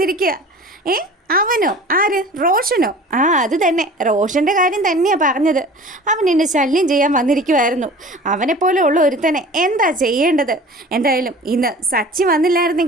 അവനോ? ആര്? റോഷനോ? അത് തന്നെ, റോഷൻ്റെ കാര്യം തന്നെയാണ് പറഞ്ഞത്. അവൻ എന്നെ ശല്യം ചെയ്യാൻ വന്നിരിക്കുമായിരുന്നു. അവനെപ്പോലെ ഉള്ള ഒരുത്തനെ എന്താ ചെയ്യേണ്ടത്? എന്തായാലും ഇന്ന് സച്ചി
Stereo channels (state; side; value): normal; both; correlation 0.42